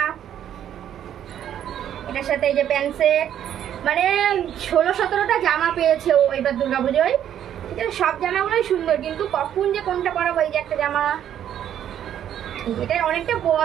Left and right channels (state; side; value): quieter; left; 10.3 dB